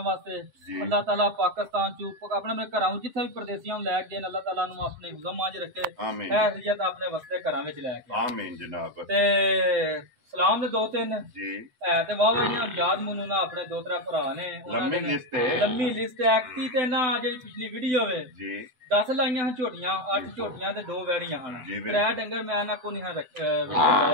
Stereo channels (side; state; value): left; late; 7.9 ms